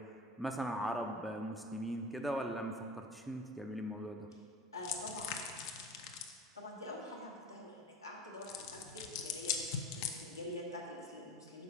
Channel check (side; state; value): both; normal; correlation 0.36